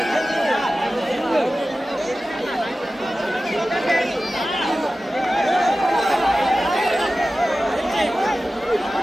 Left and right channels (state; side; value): normal; both; correlation 0.95